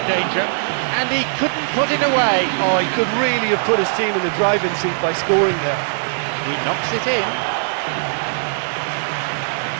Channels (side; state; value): left; silent; 66 dB below the other